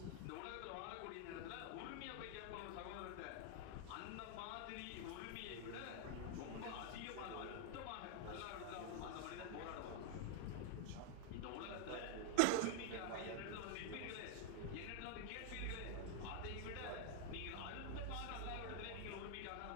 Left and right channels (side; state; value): both; different; correlation 0.00